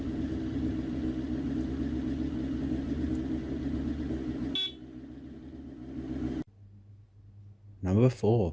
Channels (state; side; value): identical; both; correlation 1.00